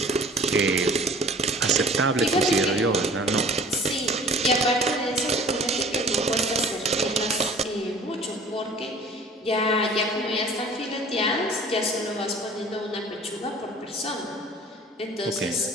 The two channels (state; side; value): normal; both; correlation 0.47